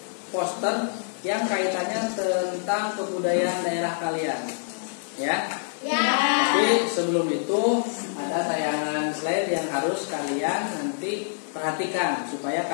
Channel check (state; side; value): silent; right; 59 dB below the other